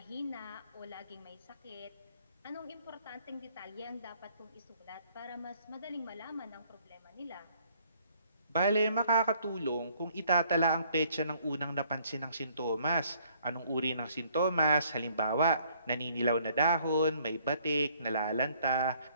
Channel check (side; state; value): both; inverted; correlation -0.63